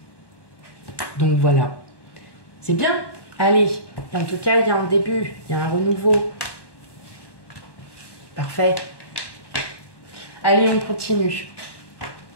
Hein. Donc voilà. C'est bien. Allez, en tout cas, il y a un début, il y a un renouveau. Parfait. Allez, on continue.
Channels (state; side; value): late; right; 1.1 ms